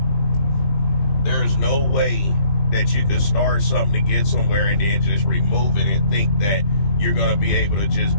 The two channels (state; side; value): late; right; 20 ms